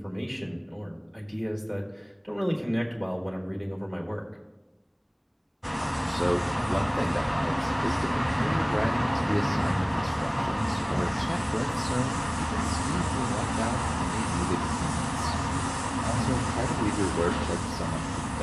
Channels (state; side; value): identical; both; correlation 1.00